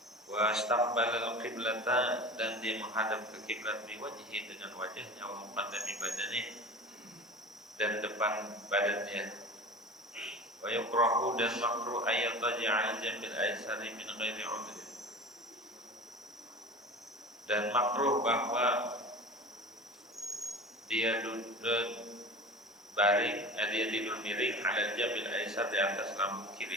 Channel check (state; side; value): normal; both; correlation 0.36